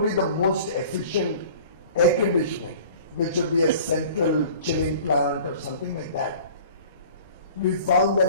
the most efficient air conditioning, which would be a central chilling plant or something like that, we found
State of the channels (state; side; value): inverted; both; correlation -0.46